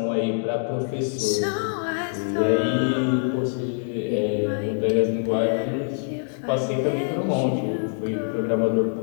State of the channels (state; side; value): silent; right; digital silence